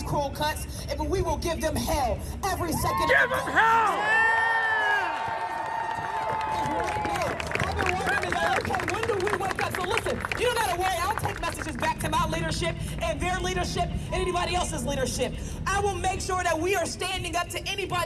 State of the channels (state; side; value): identical; both; correlation 1.00